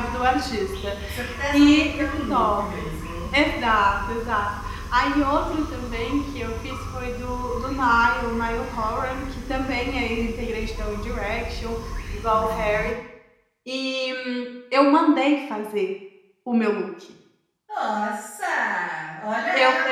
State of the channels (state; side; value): identical; both; correlation 1.00